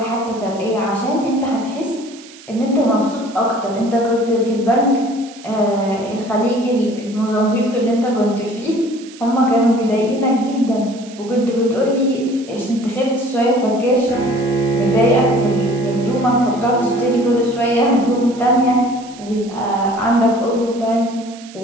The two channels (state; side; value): noise; right; hiss, 20 dB below the sound